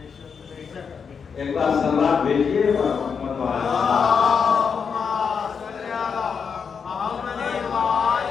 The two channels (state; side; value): quieter; right; 6.2 dB